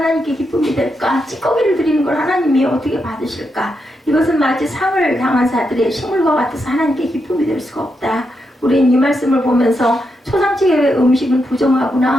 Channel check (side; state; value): both; normal; correlation 0.84